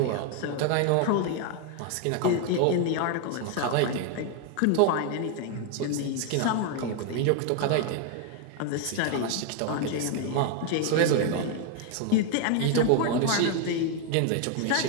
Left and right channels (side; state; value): both; different; correlation 0.01